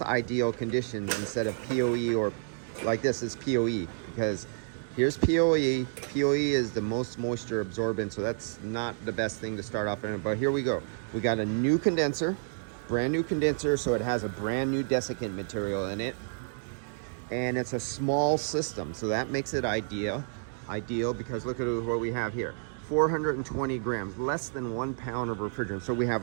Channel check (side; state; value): left; silent; digital silence